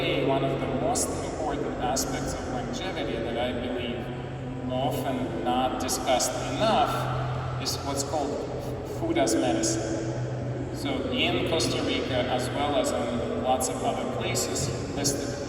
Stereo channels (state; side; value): identical; both; correlation 1.00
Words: one of the most important aspects of longevity that I believe often not discussed enough is what's called food as medicine. So in Costa Rica, as well as in lots of other places